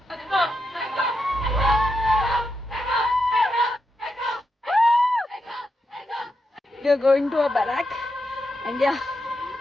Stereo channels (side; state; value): both; normal; correlation 0.85